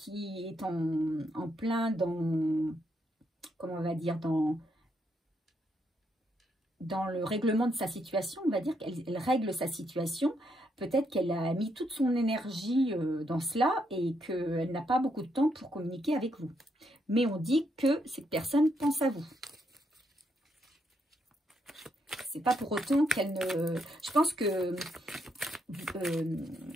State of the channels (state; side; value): normal; both; correlation 0.77